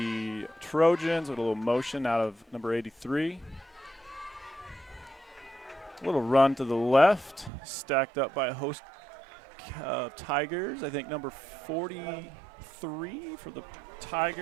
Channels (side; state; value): left; drops out; at 7.5 s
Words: Trojans with a little motion out of number 83. A little run to the left, stacked up by a host Tigers. I think number 43 for the